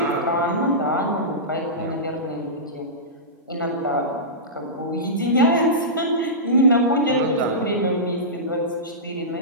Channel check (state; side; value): normal; both; correlation -0.18